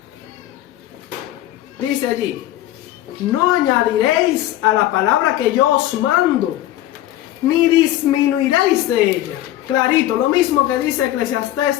Dice allí: no añadiréis a la palabra que yo os mando, ni disminuiréis de ella. Clarito, lo mismo que dice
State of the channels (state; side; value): quieter; right; 14.2 dB